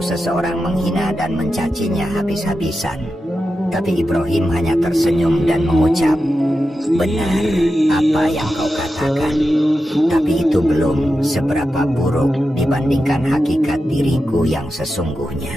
menghina dan mencacinya habis-habisan. Tapi Ibrahim hanya tersenyum dan mengucap, "Benar apa yang kau katakan, tapi itu belum seberapa buruk dibandingkan hakikat diriku yang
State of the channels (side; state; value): both; normal; correlation 0.90